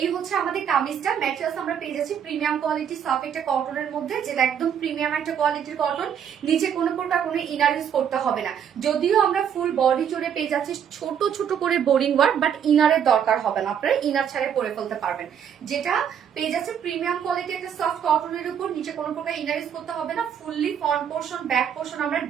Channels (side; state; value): left; quieter; 8.4 dB